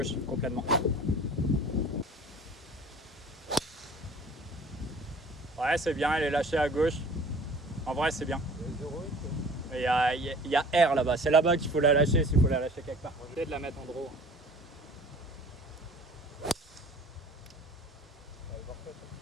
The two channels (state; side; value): normal; both; correlation 0.47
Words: complètement. Ouais, c'est bien, elle est lâchée à gauche. En vrai, c'est bien. Il y a R là-bas, c'est là-bas qu'il faut la lâcher s'il faut la lâcher quelque part. Je vais essayer de la mettre en draw.